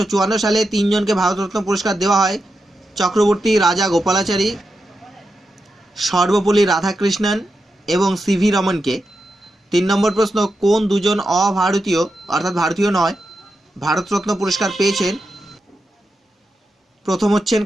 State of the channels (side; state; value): both; normal; correlation 0.88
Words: সালে 3 জনকে ভারতরত্ন পুরস্কার দেওয়া হয়, চক্রবর্তী রাজা গোপালাচারী, সর্বপল্লী রাধাকৃষ্ণন এবং সিভি রমনকে। 3 নম্বর প্রশ্ন, কোন দুজন অভারতীয় অর্থাৎ ভারতীয় নয় ভারতরত্ন পুরস্কার পেয়েছেন? প্রথম হচ্ছেন